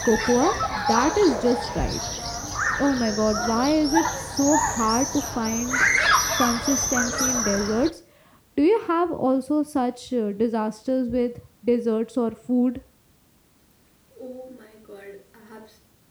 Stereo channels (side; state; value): both; identical; correlation 1.00